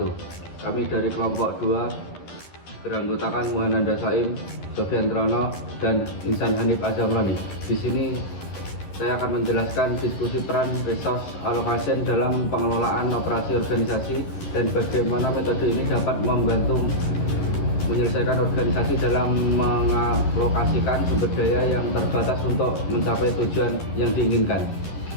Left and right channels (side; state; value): right; late; 12 ms